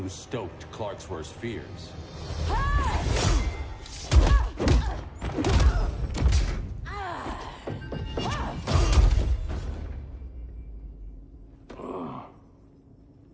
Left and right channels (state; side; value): identical; both; correlation 1.00